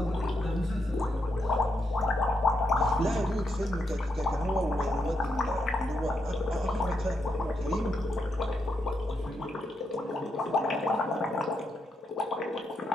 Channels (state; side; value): normal; both; correlation 0.82